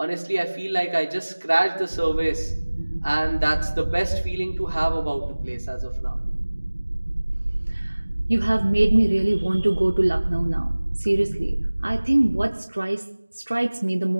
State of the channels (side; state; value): both; inverted; correlation -1.00